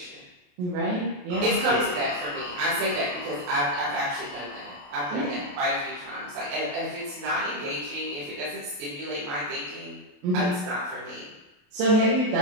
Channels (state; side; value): late; left; 28 ms